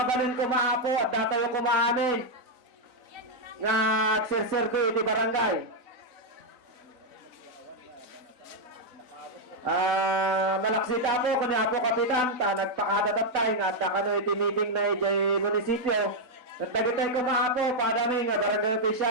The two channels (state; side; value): late; left; 4.0 ms